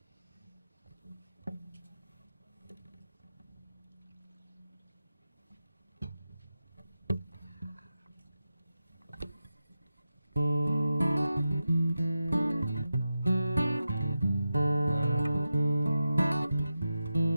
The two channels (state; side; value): inverted; both; correlation -0.91